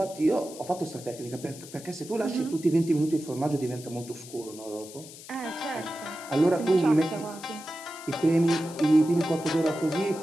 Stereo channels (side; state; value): left; noise; hiss, 16 dB below the sound